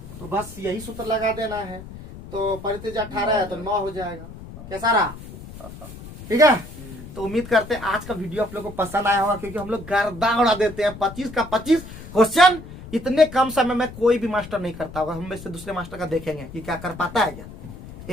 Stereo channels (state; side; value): noise; left; rumble, 14 dB below the sound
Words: तो बस यही सूत्र लगा देना है। तो परित्रिज्या 18 है तो 9 हो जाएगा। कैसा रहा? ठीक है, तो उम्मीद करते हैं आज का वीडियो आप लोग को पसंद आया होगा, क्योंकि हम लोग गर्दा उड़ा देते हैं। 25 का 25 क्वेश्चन इतने कम समय में कोई भी मास्टर नहीं करता होगा। हम में से दूसरे मास्टर का देखेंगे कि क्या कर पाता है क्या